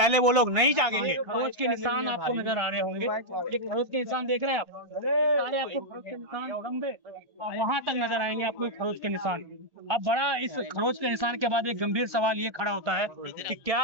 वो लोग नहीं जागेंगे। खरोच के निशान आपको नजर आ रहे होंगे, ये खरोच के निशान देख रहे हैं आप, सारे आपको खरोच के निशान लंबे वहां तक नजर आएंगे आपको खरोच के निशान। अब बड़ा इस खरोच के निशान के बाद एक गंभीर सवाल ये खड़ा होता है कि क्या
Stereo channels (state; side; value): late; left; 1.4 ms